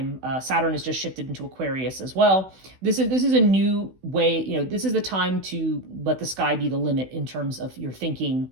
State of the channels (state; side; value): late; left; 16 ms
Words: Saturn has just shifted into Aquarius as well. This is a new way. This is the time to let the sky be the limit in terms of your thinking